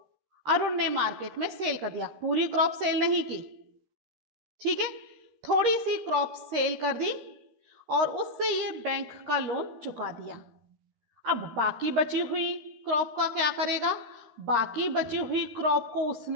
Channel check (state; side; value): late; left; 13 ms